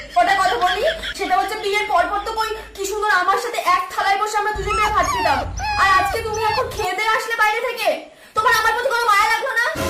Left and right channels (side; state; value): both; identical; correlation 1.00